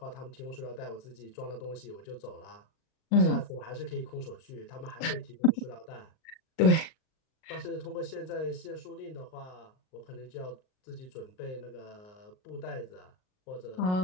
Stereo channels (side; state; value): right; late; 38 ms